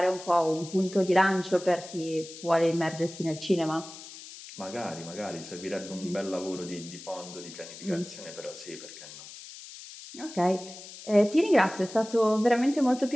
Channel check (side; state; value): left; noise; hiss, 15 dB below the sound